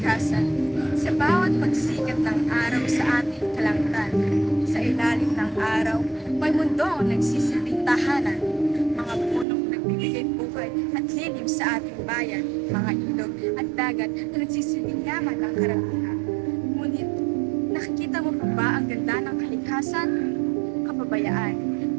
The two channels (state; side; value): drops out; left; at 9.5 s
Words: Sa bawat pagsikat ng araw sa ating kalangitan, sa ilalim ng araw, may mundong nagsisilbing tahanan. Mga punong nagbibigay buhay at lilim sa ating bayan, mga ilog at dagat na nagsisilbing yaman ng karamihan. Ngunit, nakikita mo pa ba ang ganda ng kalikasan? Kapabayaan,